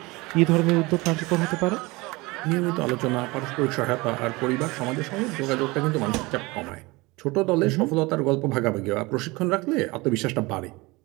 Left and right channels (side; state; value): left; quieter; 23.2 dB